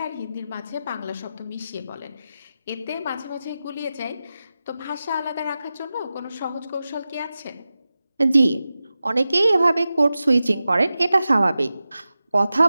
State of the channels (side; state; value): both; inverted; correlation -0.94